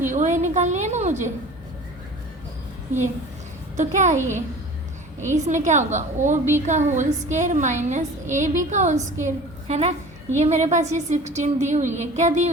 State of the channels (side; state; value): both; normal; correlation 0.41